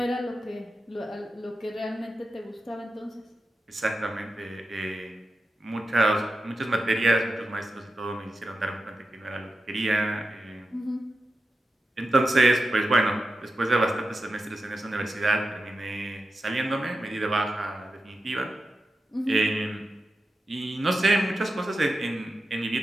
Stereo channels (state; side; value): normal; both; correlation 0.91